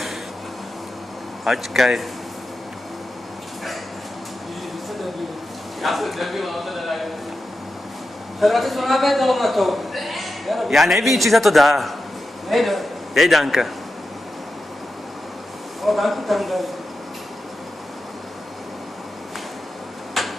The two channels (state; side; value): normal; both; correlation 0.90